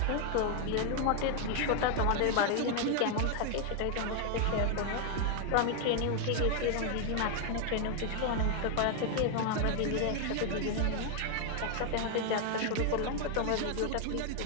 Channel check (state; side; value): different; both; correlation 0.00